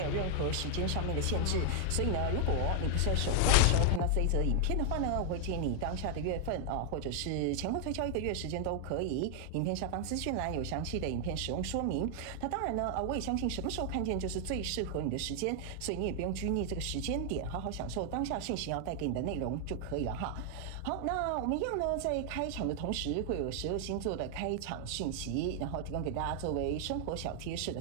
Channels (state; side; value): different; both; correlation 0.00